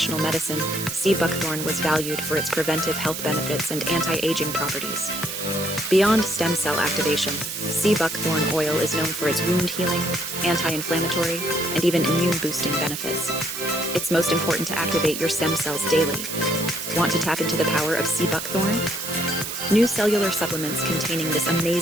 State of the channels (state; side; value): noise; right; hiss, 6 dB below the sound